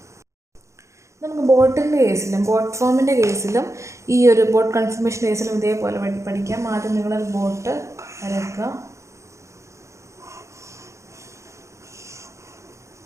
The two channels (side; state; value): left; late; 0.14 ms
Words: നമുക്ക് ബോട്ടിൻ്റെ കേസിലും ബോട്ട് ഫോമിൻ്റെ കേസിലും ഈ ഒരു ബോട്ട് കൺഫർമേഷൻ കേസിലും ഇതേപോലെ പഠിക്കാം. ആദ്യം നിങ്ങളൊരു ബോട്ട് വരയ്ക്കുക.